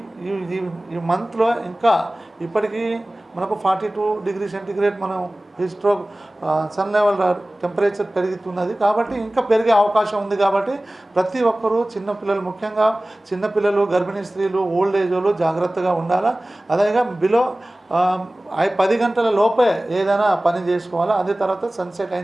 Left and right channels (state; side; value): normal; both; correlation 0.98